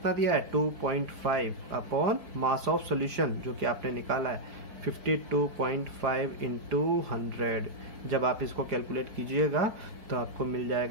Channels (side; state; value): left; late; 4.5 ms